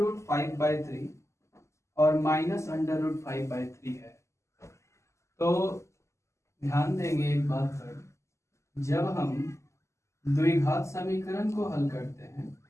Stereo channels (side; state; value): right; late; 0.13 ms